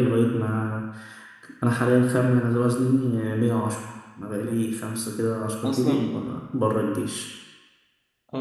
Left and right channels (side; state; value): both; identical; correlation 1.00